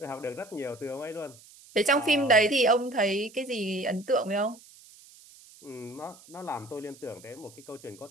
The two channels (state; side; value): noise; right; hiss, 23 dB below the sound